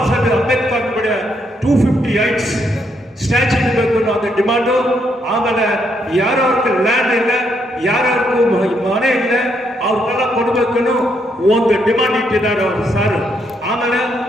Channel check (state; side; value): normal; both; correlation 0.75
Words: ಸಾಹೇಬ್ ಅಂಬೇಡ್ಕರ್ ಬಡ 258 ಸ್ಟ್ಯಾಚ್ಯೂ ಇರಬೇಕು ಅನ್ನೋ ಅದು ಡಿಮಾಂಡು. ಆಮೇಲೆ ಯಾರ್ಯಾವ್ರಿಗೆ ಲ್ಯಾಂಡ್ ಇಲ್ಲ, ಯಾರ್ಯಾರಿಗೂ ಮನೆ ಇಲ್ಲ, ಅವ್ರಿಗೆಲ್ಲ ಕೊಡಬೇಕು ಒಂದು ಡಿಮಾಂಡ್ ಇಟ್ಟಿದ್ದಾರೆ ಅವರು ಸರ್. ಆಮೇಲೆ